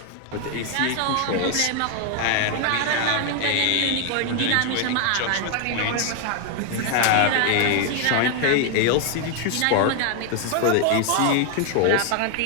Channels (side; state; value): both; different; correlation 0.01